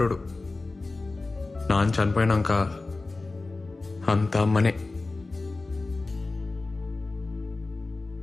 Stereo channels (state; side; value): quieter; right; 3.4 dB